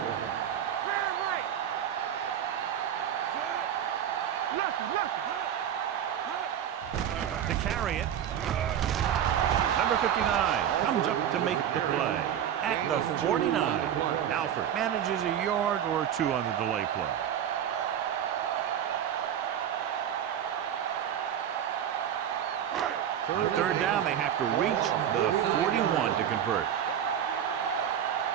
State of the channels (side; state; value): left; quieter; 9.6 dB